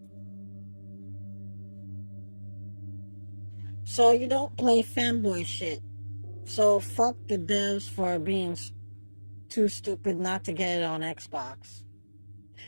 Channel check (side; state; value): both; inverted; correlation -1.00